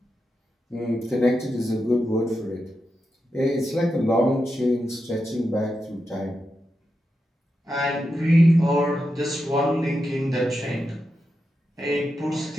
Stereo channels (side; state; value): both; normal; correlation 0.88